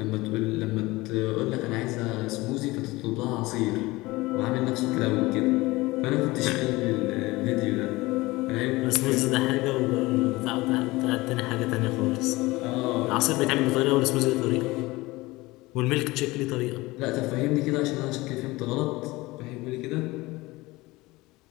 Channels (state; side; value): quieter; right; 20.8 dB